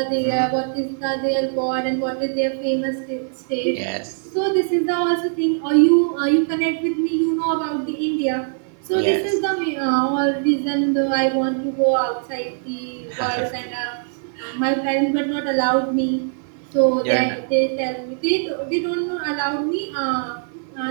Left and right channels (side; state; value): left; silent; 65 dB below the other